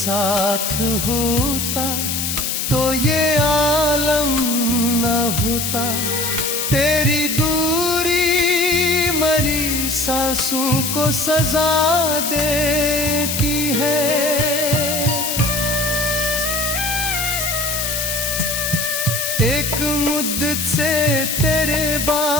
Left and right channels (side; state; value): left; noise; hiss, 1 dB below the sound